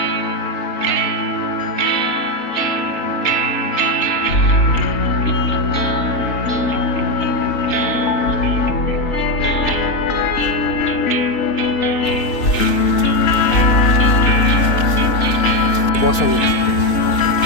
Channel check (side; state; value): right; late; 4.0 ms